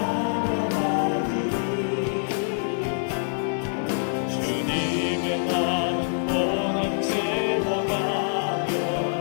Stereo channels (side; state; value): right; silent; digital silence